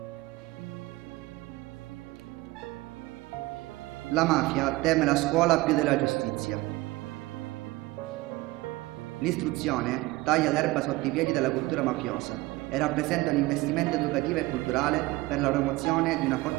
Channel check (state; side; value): quieter; left; 20.3 dB